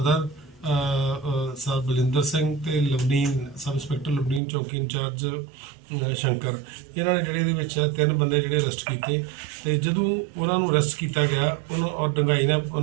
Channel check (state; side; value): drops out; left; at 4.4 s